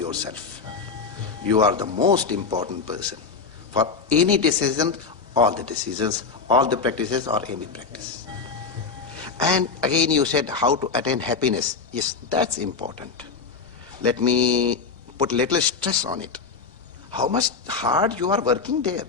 You are the most important person. For any decision, all the decisions, all the practices, or any practice. And again you said how to attain happiness. Yes, that's important. Let me put little stress on it. How much hard you are working there.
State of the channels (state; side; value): quieter; right; 5.0 dB